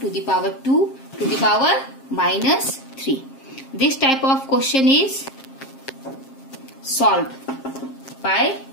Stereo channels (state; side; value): late; right; 7.5 ms